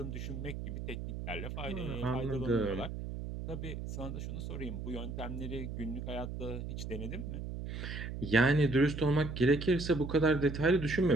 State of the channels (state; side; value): noise; right; hum, 6 dB below the sound